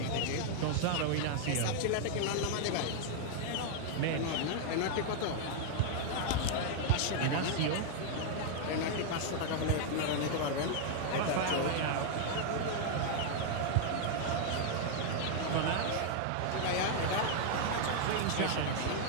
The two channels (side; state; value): both; different; correlation 0.00